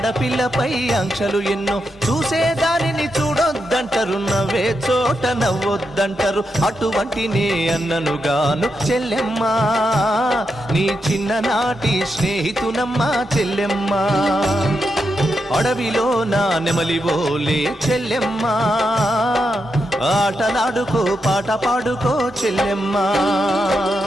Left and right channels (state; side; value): normal; both; correlation 0.85